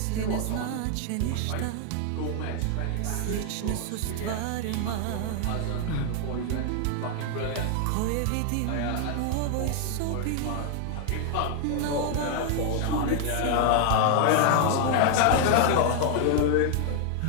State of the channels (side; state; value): both; different; correlation 0.00